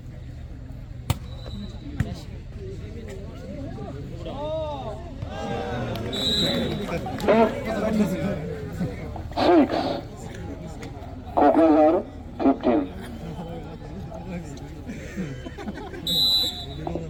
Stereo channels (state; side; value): identical; both; correlation 1.00